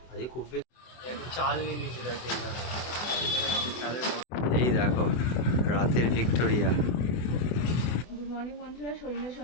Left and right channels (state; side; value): late; right; 24 ms